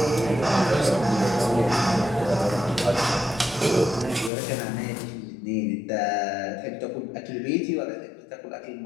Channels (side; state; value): right; drops out; at 4.3 s